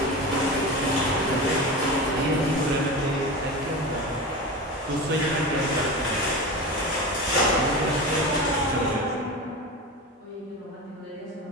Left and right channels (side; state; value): both; normal; correlation 0.26